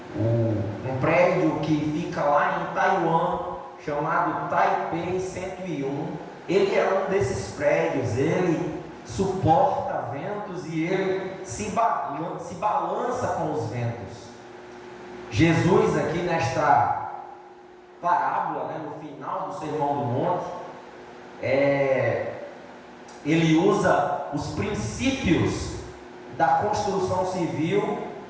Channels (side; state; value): both; identical; correlation 1.00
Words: Um prédio que fica lá em Taiwan, chamado Taipei 101, ele é um desses prédios. Ele suporta ventos e ele se balança com os ventos. Jesus aqui nesta parábola, no final do Sermão do Monte, ele usa os princípios da construção civil